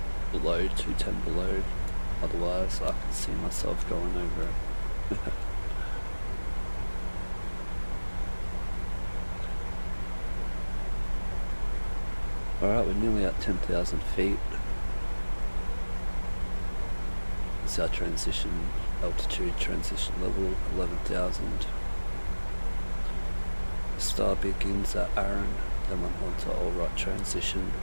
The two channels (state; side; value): inverted; both; correlation -1.00